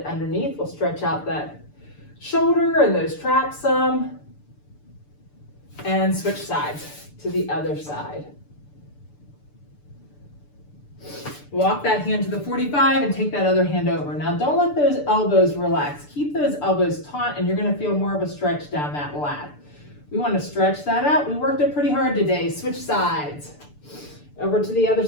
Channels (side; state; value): right; late; 6.8 ms